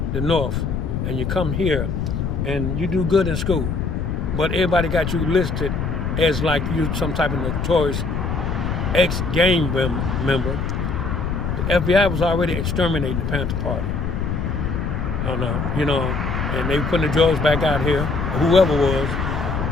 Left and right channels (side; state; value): left; noise; rumble, 2 dB below the sound